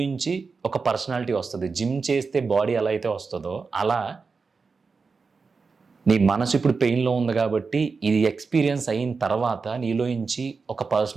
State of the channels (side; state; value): left; quieter; 4.7 dB